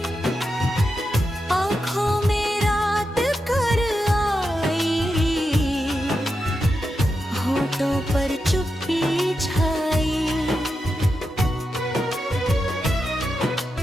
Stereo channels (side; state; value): both; normal; correlation 0.88